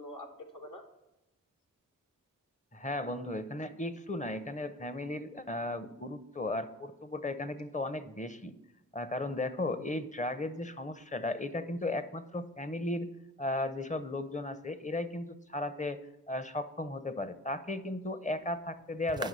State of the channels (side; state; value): both; normal; correlation 0.43